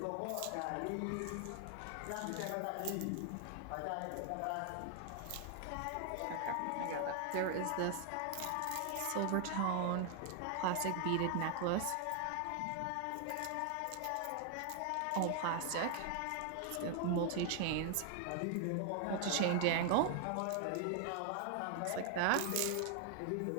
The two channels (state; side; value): different; both; correlation 0.00